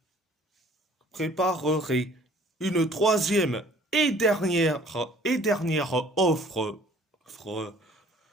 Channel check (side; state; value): both; normal; correlation 0.54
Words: préparerait une troisième et dernière offre